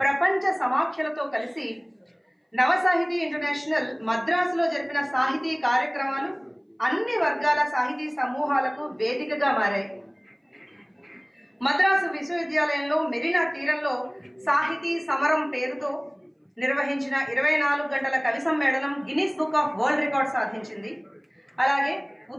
ప్రపంచ సమాఖ్యలతో కలిసి నవసాహితీ ఇంటర్నేషనల్ మద్రాసులో జరిపిన సాహితీ కార్యక్రమాలు అన్ని వర్గాల సాహితీ సమూహాలకు వేదికగా మారాయి. మద్రాసు విశ్వవిద్యాలయంలో మెరీనా తీరంలో సాహితీ సమరం పేరుతో నిర్వహించిన 24 గంటల కవి సమ్మేళనం Guinness book of world record సాధించింది. అలాగే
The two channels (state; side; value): identical; both; correlation 1.00